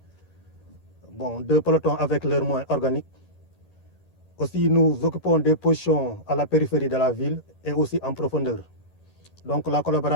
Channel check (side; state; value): right; late; 11 ms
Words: 2 pelotons avec leurs moyens organiques. Aussi, nous occupons des positions à la périphérie de la ville et aussi en profondeur. Donc la